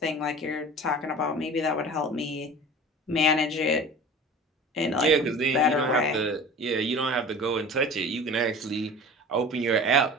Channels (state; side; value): normal; both; correlation 0.38